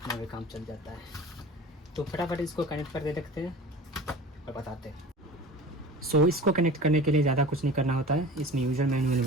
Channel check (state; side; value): normal; both; correlation 0.38